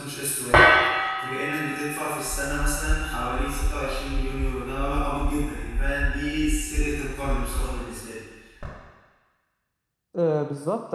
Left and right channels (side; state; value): both; identical; correlation 1.00